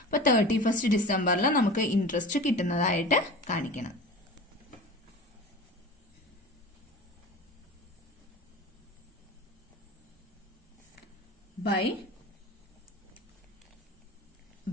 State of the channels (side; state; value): both; normal; correlation 0.35